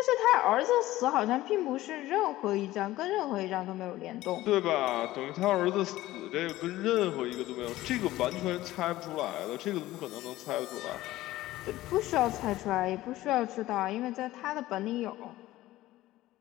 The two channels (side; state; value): right; quieter; 16.3 dB